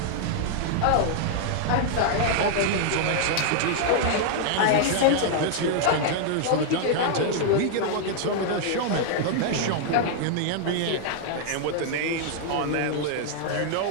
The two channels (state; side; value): different; both; correlation -0.01